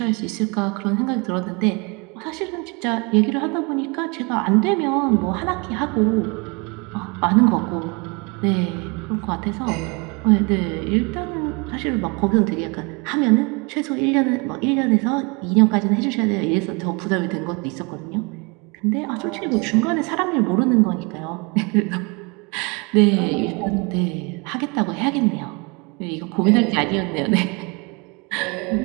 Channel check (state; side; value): quieter; left; 30.0 dB